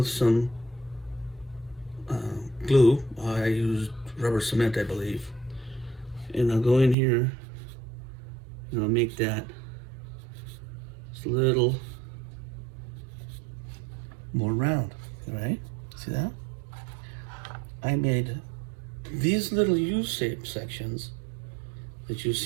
some glue. I used rubber cement, I believe. And I'll go in here and I'll make that just a little more round, all right? See that? I made these little U-shaped sections that you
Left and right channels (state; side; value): drops out; left; at 7.0 s